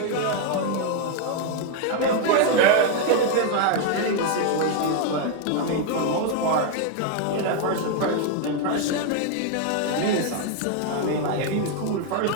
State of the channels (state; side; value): different; both; correlation 0.01